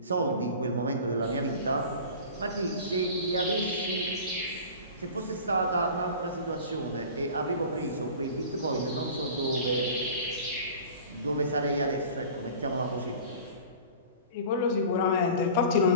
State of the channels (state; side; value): inverted; both; correlation -0.40